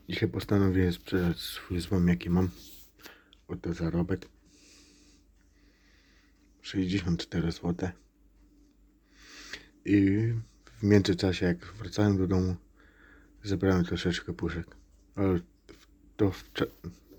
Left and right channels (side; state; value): both; identical; correlation 1.00